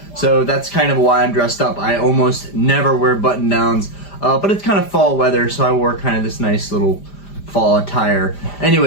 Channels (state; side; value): late; right; 5.0 ms